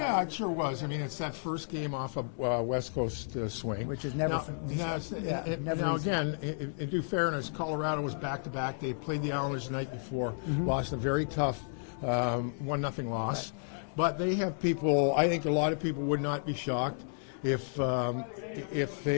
it sure was. I mean, it's that first game off a West Coast swing. Which is never Now, again, in due fairness, Colorado was back-to-back. They played the Islanders the night before, lost a very tough 1-0 loss. But they have people, I think a lot of people would not be shocked if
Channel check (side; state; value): right; silent; digital silence